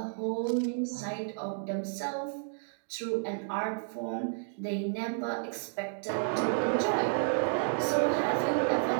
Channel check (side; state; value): left; silent; digital silence